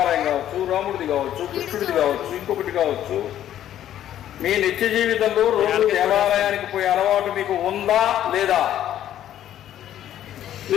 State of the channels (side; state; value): right; quieter; 11.5 dB